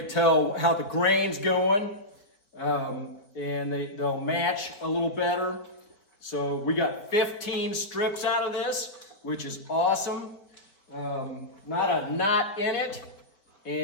tell how the grain's going, and they'll match a little better. So we got 15 strips out of this, which is awesome. Not a knot in it.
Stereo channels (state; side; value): late; right; 4.7 ms